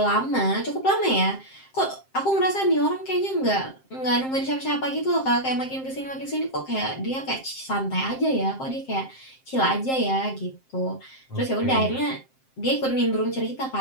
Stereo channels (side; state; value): right; late; 7.6 ms